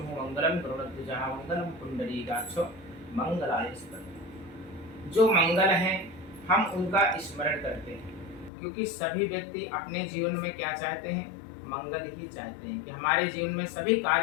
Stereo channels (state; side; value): drops out; right; at 8.5 s